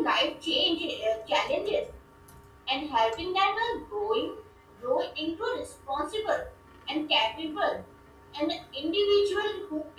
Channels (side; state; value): both; identical; correlation 1.00